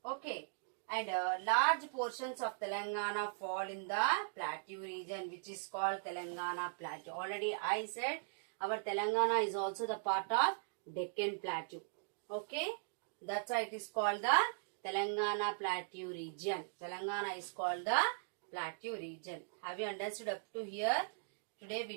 Okay. And large portions of Telangana fall in the Plateau region, which is called Telangana Plateau. Already I said our Telangana is also the part of Deccan Plateau. Okay. That's why it is called the Telangana Plateau region. Telangana is called the Plateau region. Have you understood up to here? Today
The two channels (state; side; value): silent; left; digital silence